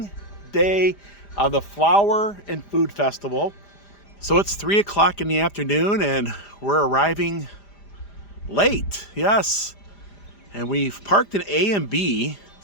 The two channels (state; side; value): late; right; 5.0 ms